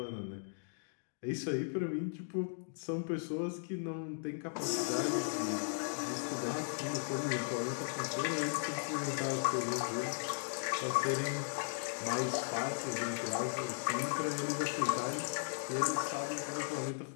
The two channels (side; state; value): right; silent; digital silence